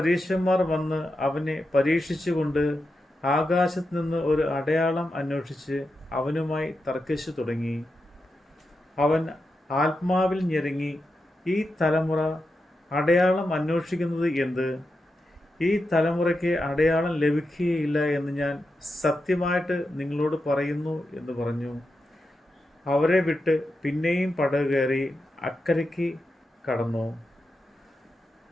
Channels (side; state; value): both; normal; correlation 0.88